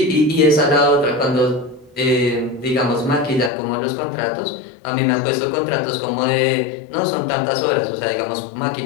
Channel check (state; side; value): drops out; right; at 3.5 s